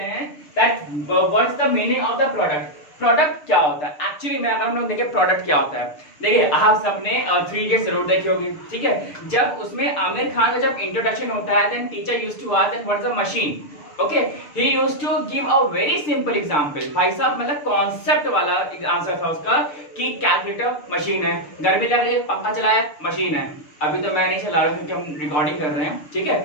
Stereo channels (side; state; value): right; late; 6.7 ms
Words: हैं that what is the meaning of the product. Product क्या होता है एक्चुअली में, अगर हम लोग देखें प्रोडक्ट क्या होता है। देखिए आप सबने 3 इडियट्स जरूर देखी होगी, ठीक है। जब उसमें आमिर खान का जब इंट्रोडक्शन होता है then teacher used to ask that what is the machine. Okay, he used to give a very simple example. भाई साहब मतलब कॉन्सेप्ट वाला आंसर था उसका कि कैलकुलेटर मशीन है, गर्मी लग रही है पंखा चलाया मशीन है। अभी तो मैं नहीं चला रहा हूँ क्योंकि हम रिकॉर्डिंग कर रहे हैं, ठीक